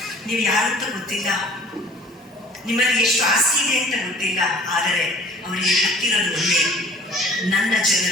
ನೀವು ಯಾರಂತ ಗೊತ್ತಿಲ್ಲ, ನಿಮ್ಮಲ್ಲಿ ಎಷ್ಟು ಆಸ್ತಿ ಇದೆ ಅಂತ ಗೊತ್ತಿಲ್ಲ. ಆದರೆ ಅವರಿಗೆ ಗೊತ್ತಿರೋದು ಒಂದೇ, ನನ್ನ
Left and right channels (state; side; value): normal; both; correlation 0.50